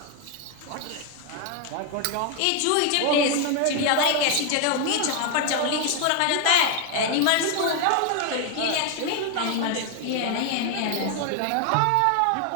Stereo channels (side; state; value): both; different; correlation 0.01